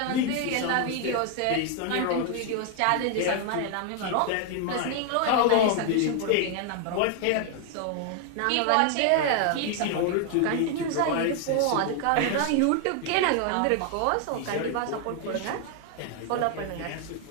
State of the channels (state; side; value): different; both; correlation 0.00